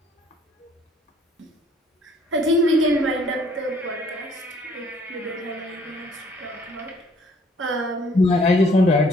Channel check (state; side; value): normal; both; correlation 0.60